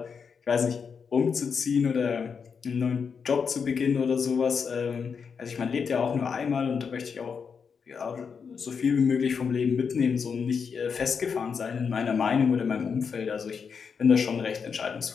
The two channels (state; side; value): quieter; right; 6.1 dB